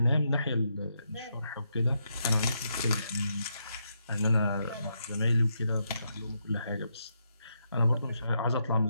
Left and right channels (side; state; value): both; inverted; correlation -0.80